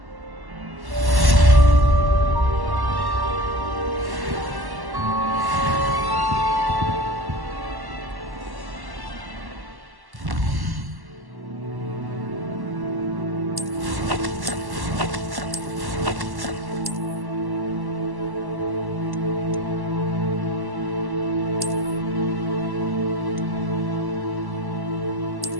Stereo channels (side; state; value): left; late; 1.1 ms